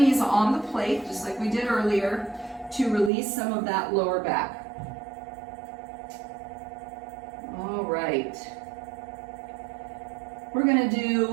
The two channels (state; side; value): drops out; left; at 3.1 s